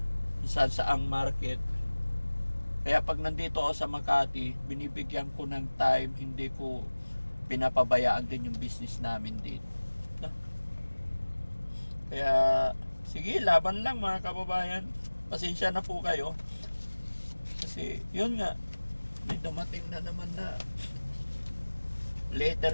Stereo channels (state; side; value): inverted; both; correlation -1.00